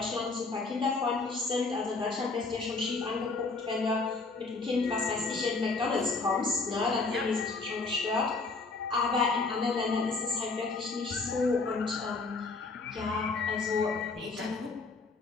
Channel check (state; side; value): quieter; right; 3.9 dB